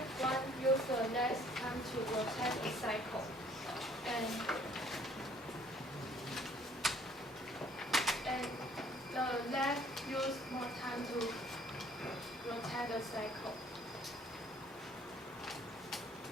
one uses less time to rotate a cycle. And the left use more time to rotate the cycle.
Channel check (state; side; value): normal; both; correlation 0.59